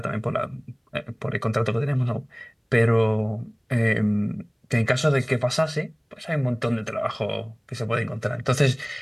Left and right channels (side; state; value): both; identical; correlation 1.00